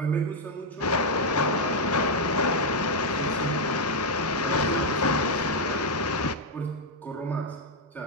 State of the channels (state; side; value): normal; both; correlation 0.00